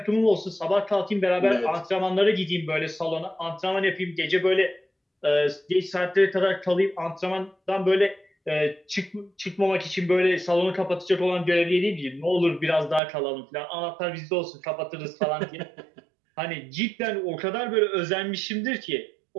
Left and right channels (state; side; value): drops out; left; at 13.0 s